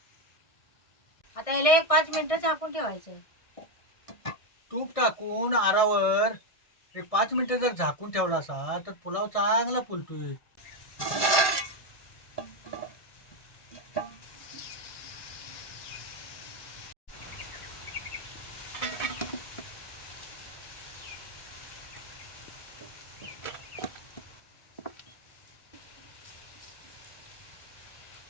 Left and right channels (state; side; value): late; right; 1.6 ms